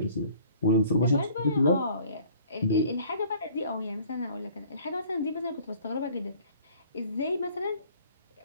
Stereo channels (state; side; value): inverted; both; correlation -0.53